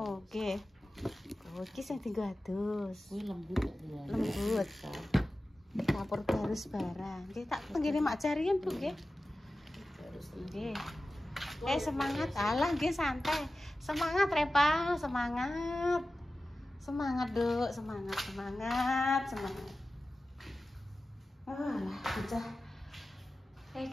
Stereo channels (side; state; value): both; normal; correlation 0.95